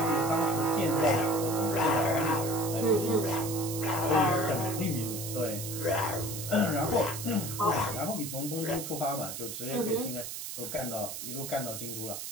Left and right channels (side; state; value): right; noise; hiss, 7 dB below the sound